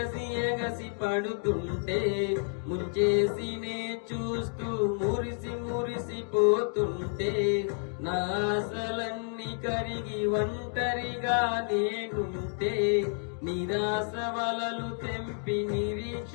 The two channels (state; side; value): silent; right; 58 dB below the other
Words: ఎగసి పడుతుంటే ముంచేసినే చూస్తూ మురిసి మురిసిపోతుంటే నా ఆశలన్నీ కరిగి ఒంటరిగా నేనుంటే నిరాశ వలలు తెంపి